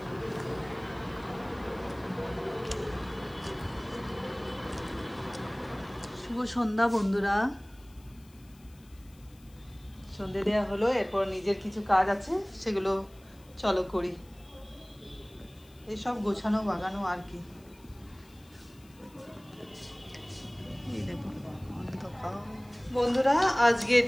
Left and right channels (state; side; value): noise; left; hiss, 28 dB below the sound